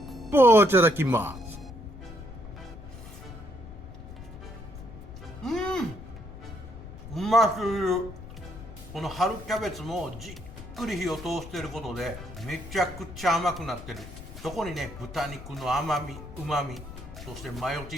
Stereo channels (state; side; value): noise; left; rumble, 13 dB below the sound